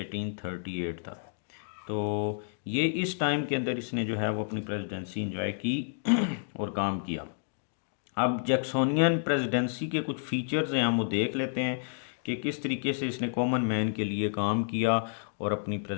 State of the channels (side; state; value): right; silent; digital silence